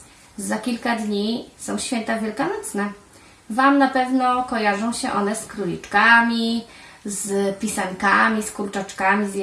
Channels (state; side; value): identical; both; correlation 1.00